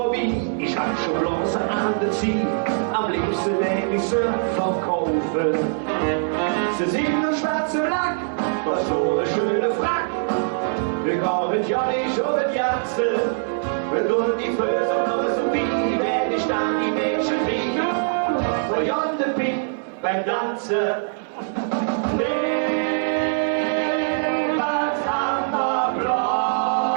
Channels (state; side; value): silent; left; digital silence